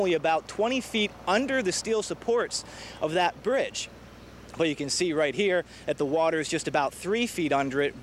about 20 feet under the steel supports of that bridge. But you can see right here that the water is just about 3 feet under it,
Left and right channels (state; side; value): identical; both; correlation 1.00